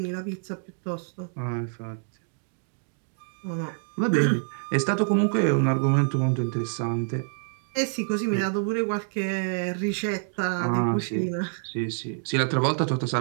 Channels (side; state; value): left; silent; digital silence